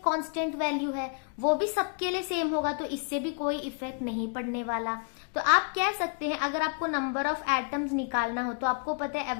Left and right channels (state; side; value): quieter; right; 37.7 dB